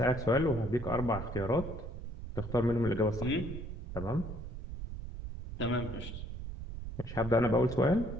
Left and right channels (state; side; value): noise; right; rumble, 8 dB below the sound